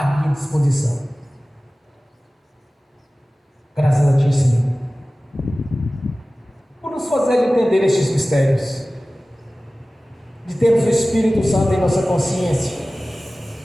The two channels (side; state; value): both; normal; correlation 0.97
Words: minha disposição. Graças a Ti, Senhor, por nos fazer entender estes mistérios, de termos o Espírito Santo em nossa consciência,